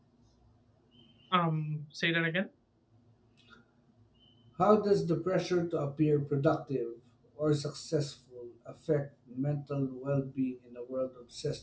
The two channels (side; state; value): both; identical; correlation 1.00